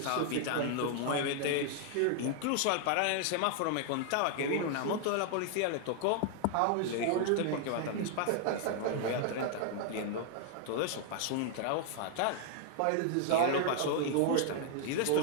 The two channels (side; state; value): both; different; correlation 0.00